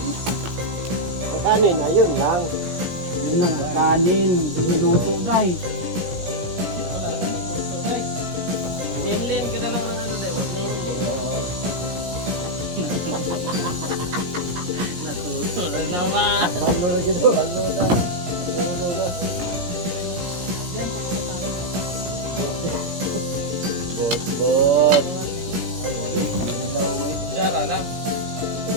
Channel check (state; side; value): late; left; 17 ms